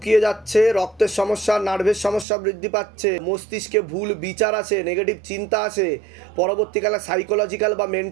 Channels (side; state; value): left; drops out; at 2.2 s